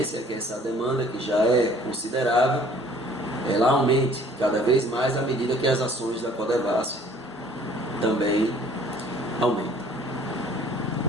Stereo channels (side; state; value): both; normal; correlation 0.55